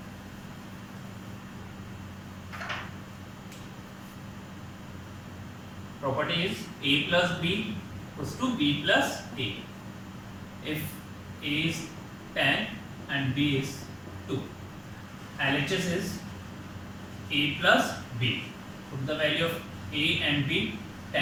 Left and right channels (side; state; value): both; identical; correlation 1.00